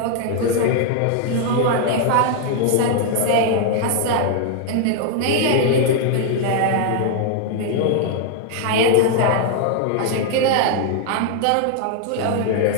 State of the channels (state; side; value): different; both; correlation 0.00